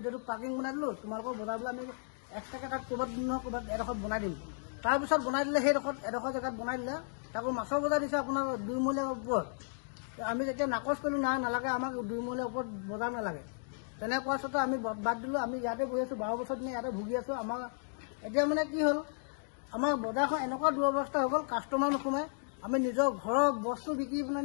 পাৰ্কিং বনাই দিলোঁ, তোমালোকৰ বজাৰ বোলে আমি এক্সট্ৰাকৈ তাত ক'ৰবাত এডোখৰত বনাই দিম। তাৰপিছত বনাই দিলে এডোখৰ জেগাত বনাই দিলে, তাকো মাছৰ বজাৰ দিছে আপোনাৰ 2 মহলীয়াৰ ওপৰত। আমি যেতিয়া নাকচ কৰিলোঁ, নালাগে আমাক 2 মহলীয়াৰ ওপৰত বজাৰ নালাগে। তেনে কোৱাৰ স্বত্তে আমি বাদ দিলোঁ। আমি ইয়াতে বহি আছোঁ, 12 বছৰ দিনে ইয়াতে ভুগি আছোঁ। আমাৰ এতিয়া মানে কি হ'ল, আমাৰ বজাৰখন এনেকুৱা দুৰৱস্থা হৈ গ'ল, কাষ্টমাৰ নোসোমায়। আমি নিজৰ ঘৰৰ বস্তু বিক্ৰী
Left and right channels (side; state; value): right; silent; digital silence